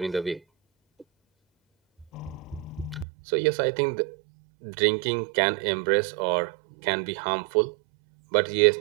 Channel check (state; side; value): drops out; left; at 3.1 s